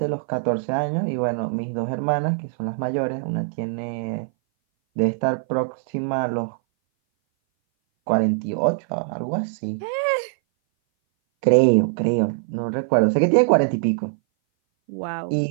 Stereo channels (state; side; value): silent; left; 59 dB below the other